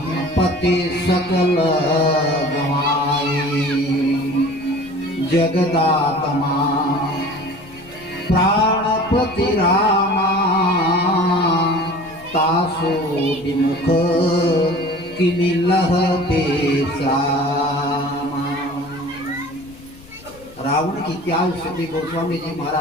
सकल गवाई जगदात्मा प्राणपति रामा तासो विमुख किमिलह बेसामा। रावण की क्या स्थिति गोस्वामी जी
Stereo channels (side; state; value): left; noise; rumble, 23 dB below the sound